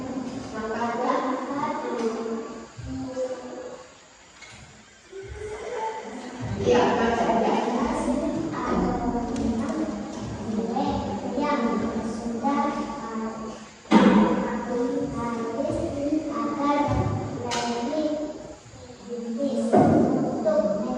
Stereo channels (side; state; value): both; identical; correlation 1.00